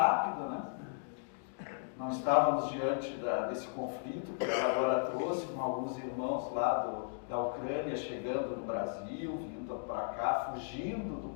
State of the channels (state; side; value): silent; right; digital silence